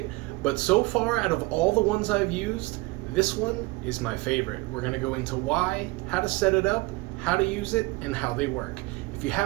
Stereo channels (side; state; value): left; quieter; 23.0 dB